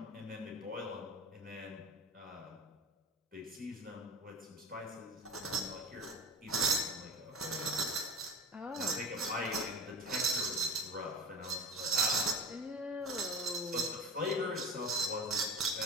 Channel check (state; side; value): normal; both; correlation 0.31